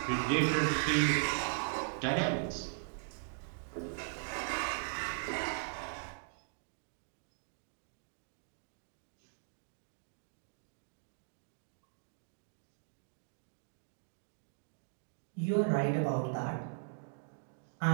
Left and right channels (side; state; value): left; silent; digital silence